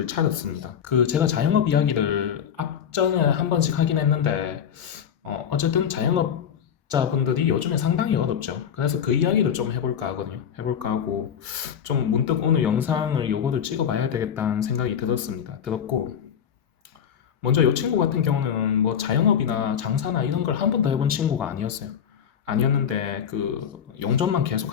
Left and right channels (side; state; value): right; quieter; 8.3 dB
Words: 차렸습니다. 제가 자영업 이야기를 앞전에 한 번씩 하긴 했는데, 어쨌든 자영업자분들이 요즘에 상당히 어렵죠. 그래서 그 이야기를 좀 해볼까 하거든요. 해볼까 하고, 좀 문득 오늘 영상을 요거를 찍어봐야 되겠다는 생각이 들었고, 먼저 이 친구 같은 경우는 뭐 자영업이나 장사나 이런 걸 한 번도 해본 친구가 아니었어요. 아니었는데 용접만